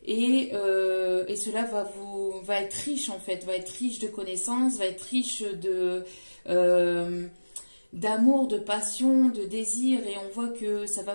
Et cela va être riche en fait, va être riche de connaissances, va être riche d'amour, de passion, de désir, et on voit que ça va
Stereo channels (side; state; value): both; inverted; correlation -1.00